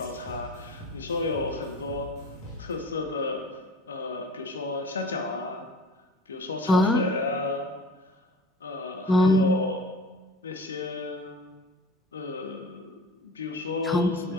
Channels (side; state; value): both; normal; correlation 0.39